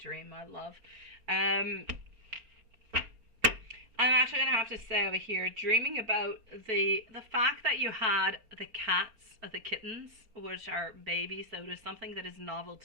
my love. I'm actually going to have to say over here, dreaming about the fact that you had the cats, the kittens, which are babies, so it is something that is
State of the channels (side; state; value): left; late; 4.3 ms